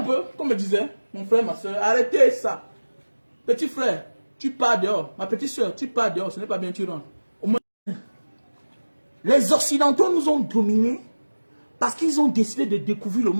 peu, comme je disais, mon frère, ma soeur, arrêtez ça. Petit frère, tu pars dehors. Ma petite soeur, tu pars dehors, ce n'est pas bien, tu rentres. Au moins, les Occidentaux nous ont dominés parce qu'ils ont décidé de découvrir le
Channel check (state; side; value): inverted; both; correlation -1.00